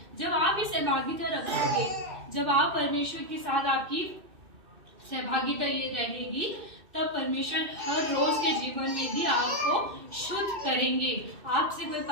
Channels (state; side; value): late; left; 2.6 ms